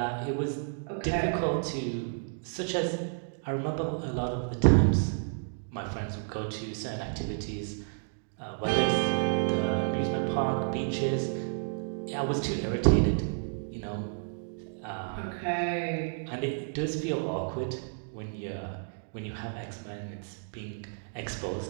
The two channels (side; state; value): left; silent; digital silence